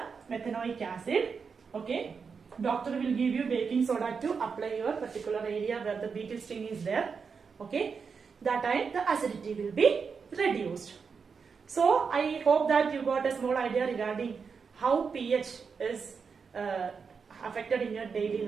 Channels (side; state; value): left; quieter; 5.6 dB